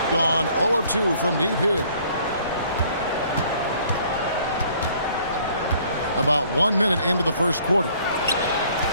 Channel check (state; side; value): inverted; both; correlation -0.59